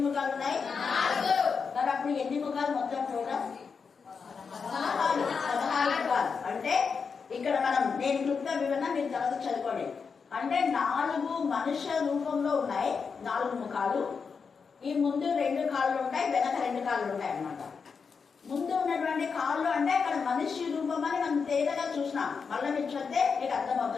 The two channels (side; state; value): right; quieter; 5.6 dB